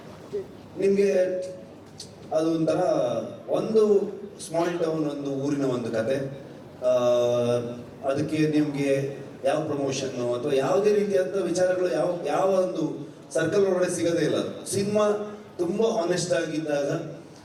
ನಿಮಗೆ ಅದು ಒಂಥರ ಒಂದು ಸ್ಮಾಲ್ ಟೌನ್, ಒಂದು ಊರಿನ ಒಂದು ಕತೆ. ಅದಕ್ಕೆ ನಿಮಗೆ ಯಾವ ಪ್ರಮೋಷನ್ನು ಅಥವಾ ಯಾವುದೇ ರೀತಿಯಾದ ವಿಚಾರಗಳು ಯಾವ ಒಂದು ಸರ್ಕಲ್ ಒಳಗಡೆ ಸಿಗೋದೇ ಇಲ್ಲ. ಸಿನಿಮಾ ತುಂಬ ಹಾನೆಸ್ಟ್ ಆಗಿದ್ದಾಗ,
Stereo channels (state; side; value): identical; both; correlation 1.00